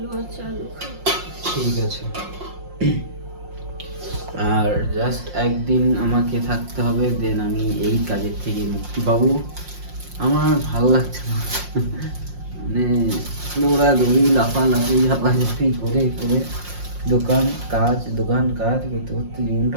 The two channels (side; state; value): left; late; 5.6 ms